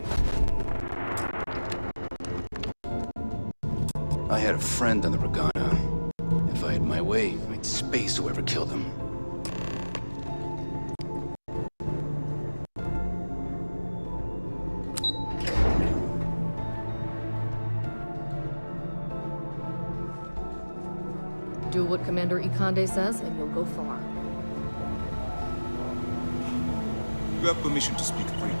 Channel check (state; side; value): inverted; both; correlation -1.00